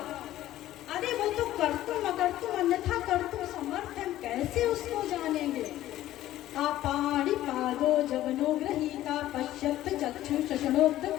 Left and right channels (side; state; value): right; quieter; 14.1 dB